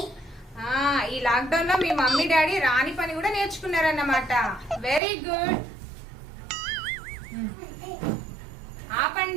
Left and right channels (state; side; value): drops out; left; at 5.0 s